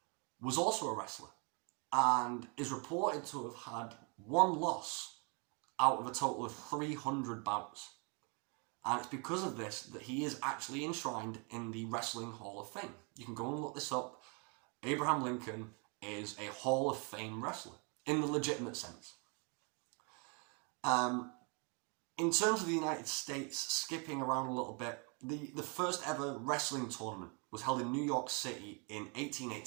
was also a wrestler and is reported to have had one loss out of a total of 300 bouts. And it's because of this that he is actually enshrined in the Wrestling Hall of Fame. You can go and look this up. Abraham Lincoln is a Hall of Fame wrestler in the legitimate sense. In terms of the United States, skipping around a little bit, the first ever wrestling tournament was held in New York City in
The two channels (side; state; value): left; quieter; 34.6 dB